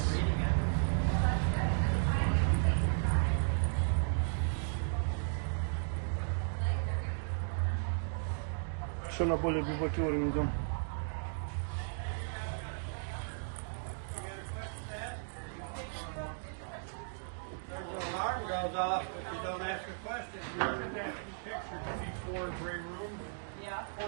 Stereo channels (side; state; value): left; silent; digital silence